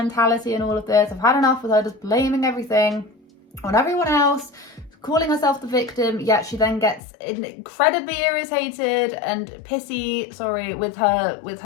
and all of this. I've had enough with her just blaming everything on everyone else, calling herself the victim, yet she then gets incredibly irritated and pissy, with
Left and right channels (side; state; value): right; drops out; at 7.0 s